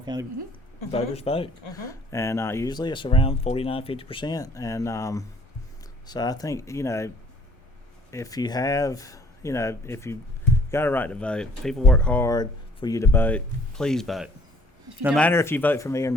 County voters vote, and usually it's around 49-50%. And so I think if you have if you got a right to vote, people work hard for you to vote. Please vote. No matter if you vote for me or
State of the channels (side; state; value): both; normal; correlation 0.58